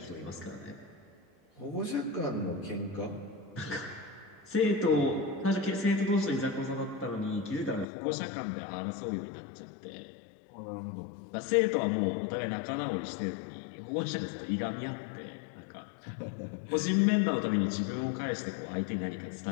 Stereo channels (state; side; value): drops out; right; at 7.9 s